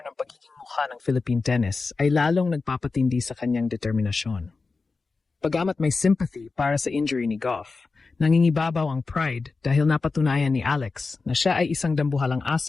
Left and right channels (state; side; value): quieter; right; 4.1 dB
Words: ng pagiging mukha ng Philippine tennis ay lalong nagpapatindi sa kanyang determinasyon. Pagamat may sympathy para sa injury ni Gauff, nangingibabaw ang pride dahil napatunayan ni Alex na siya ay isang dambuhalang